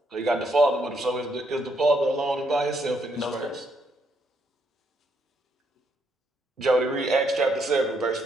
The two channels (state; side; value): normal; both; correlation 0.74